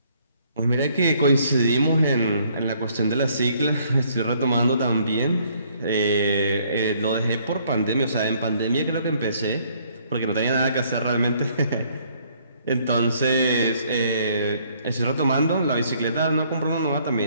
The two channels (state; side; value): inverted; both; correlation -0.65